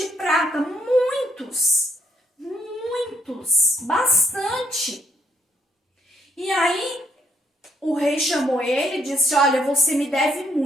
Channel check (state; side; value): normal; both; correlation 0.71